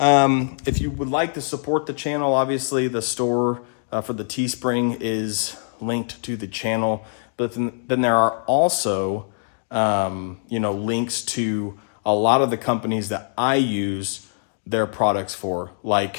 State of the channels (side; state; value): right; silent; digital silence